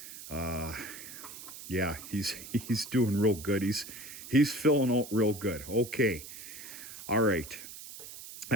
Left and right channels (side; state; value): right; noise; hiss, 13 dB below the sound